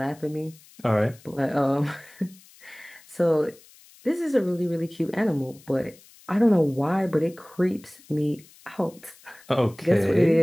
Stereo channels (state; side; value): noise; left; hiss, 25 dB below the sound